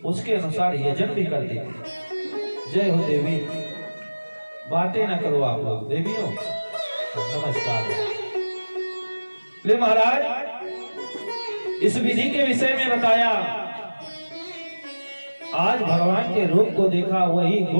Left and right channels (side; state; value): both; inverted; correlation -1.00